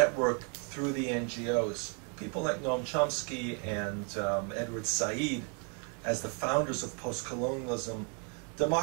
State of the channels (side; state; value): left; quieter; 38.4 dB